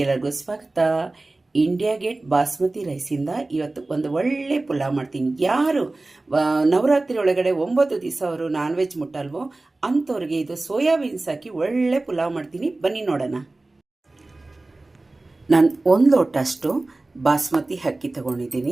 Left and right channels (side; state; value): left; quieter; 3.1 dB